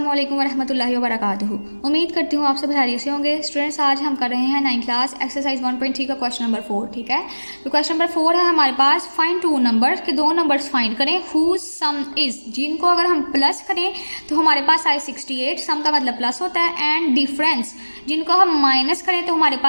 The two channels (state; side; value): inverted; both; correlation -1.00